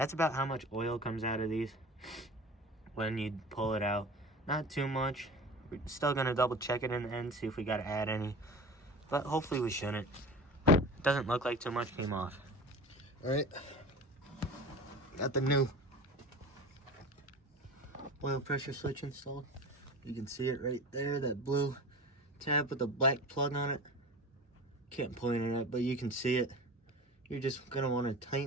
about how much oil comes out of these when you pull it out. Not too much. We're still gonna double check it in the end, see if we gotta add any, but hopefully we shouldn't. Doesn't look like too much came off. All right, got the new oil pressure switch installed. You can see it right there, that blue tab with the black plug on it. Can't point it at, but you can see it. You're just gonna want to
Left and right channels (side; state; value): both; normal; correlation 0.35